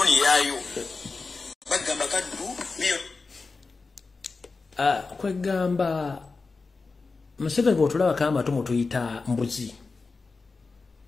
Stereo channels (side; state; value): right; quieter; 4.1 dB